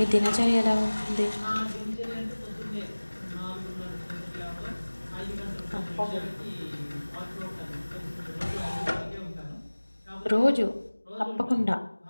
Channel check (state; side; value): inverted; both; correlation -1.00